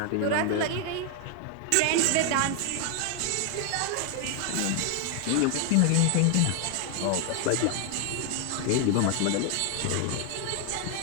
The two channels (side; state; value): both; different; correlation 0.00